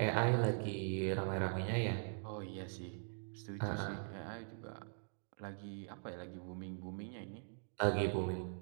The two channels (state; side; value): silent; left; digital silence